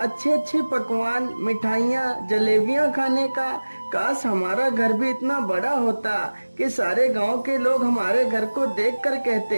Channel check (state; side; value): inverted; both; correlation -1.00